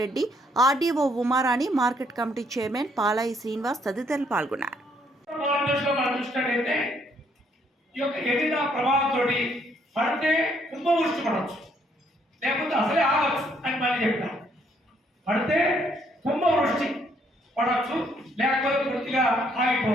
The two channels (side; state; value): both; normal; correlation 0.69